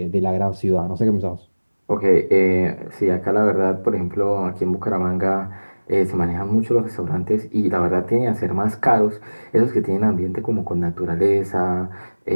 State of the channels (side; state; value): both; inverted; correlation -1.00